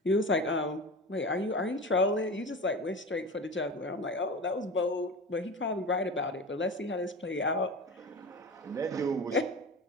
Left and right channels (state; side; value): normal; both; correlation 0.30